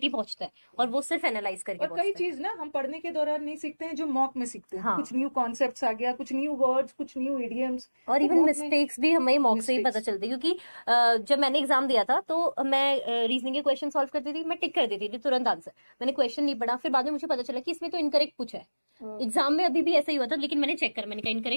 पहुंचता है, और वो सिर्फ एनालाइज करके और कई पहुंचता है। चीज ना हम पढ़ने के दौरान नहीं सीखते हैं, जो मॉक में सीखते हैं, कुछ हाँ, न्यू कॉन्सेप्ट्स आ गया, कुछ न्यू वर्ड्स, कुछ न्यू इडियम्स, और तो इवन मॉक में मिस्टेक्स भी हमें मॉक से ही पता मिस्टेक्स। चलती है, क्योंकि जब मैंने एग्जाम दिया था तो मैं रीजनिंग के क्वेश्चन सॉल्व करती थी, मैं टिक कर देती थी तुरंत आंसर, मैंने क्वेश्चन नहीं पढ़ा, फिर बाद में मुझे पता चला कि इसमें तो इनकरेक्ट पूछा है। एग्जाम में अभी भी ऐसा ही हुआ था, लेकिन मैंने चेक करा, मैंने कहा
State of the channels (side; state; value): both; inverted; correlation -1.00